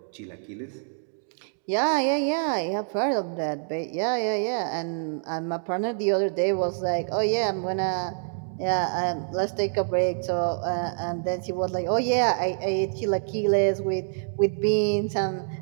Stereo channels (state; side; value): silent; left; digital silence